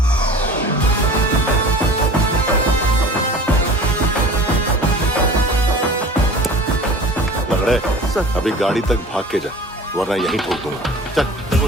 लंगड़े, अभी गाड़ी तक भाग के जा, वरना यहीं ठोक दूंगा। चल।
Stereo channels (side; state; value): both; normal; correlation 0.41